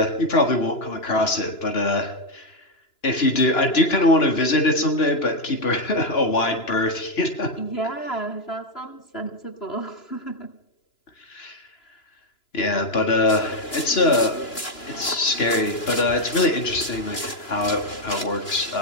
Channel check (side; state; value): right; late; 2.9 ms